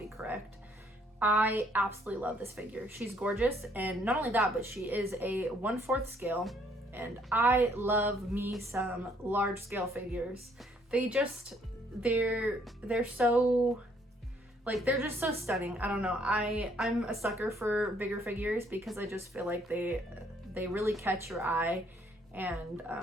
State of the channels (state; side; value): normal; both; correlation 0.66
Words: correct. I absolutely love this figure. She's gorgeous, and not only that, but she is a 1/4 scale, and I love me some large scale figures. They're so, Like, they're just so stunning. I don't know. I'm a sucker for bigger figures because I just feel like they really catch your eye, and